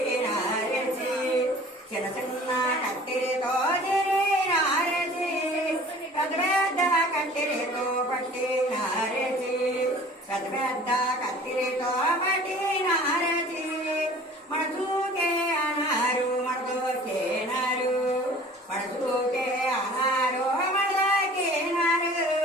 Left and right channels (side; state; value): both; normal; correlation 0.47